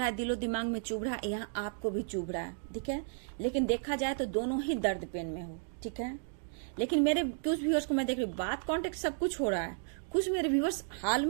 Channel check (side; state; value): left; silent; digital silence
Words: है, दिलो दिमाग में चुभ रहा है, यहाँ आपको भी चुभ रहा है, ठीक है। लेकिन देखा जाए तो दोनों ही दर्द पेन में हो, ठीक है। लेकिन मेरे कुछ व्यूअर्स को मैं देख रही हूँ, बात कॉन्टेक्ट सब कुछ हो रहा है। कुछ मेरे व्यूअर्स हाल